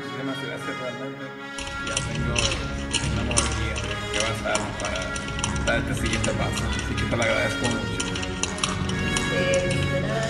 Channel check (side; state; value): both; identical; correlation 1.00